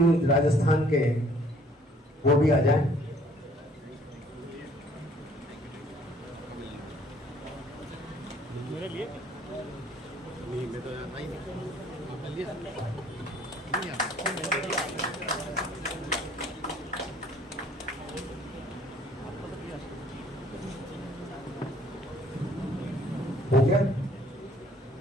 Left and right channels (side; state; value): both; normal; correlation 0.58